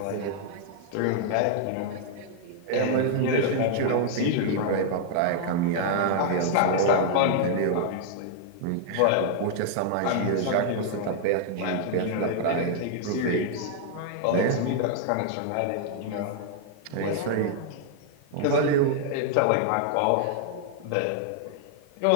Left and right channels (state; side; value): different; both; correlation -0.01